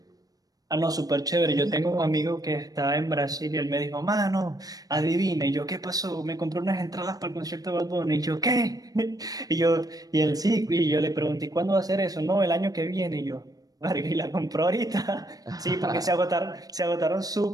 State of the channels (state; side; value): late; left; 0.18 ms